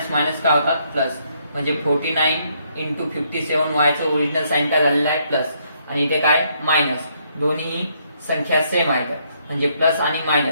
मायनस काय होतात, प्लस. म्हणजे 49 into 57y चं ओरिजिनल साइन काय झालेलं आहे, प्लस, आणि इथे काय मायनस. दोन्ही संख्या सेम आहेत, म्हणजे प्लस आणि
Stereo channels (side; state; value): both; inverted; correlation -0.72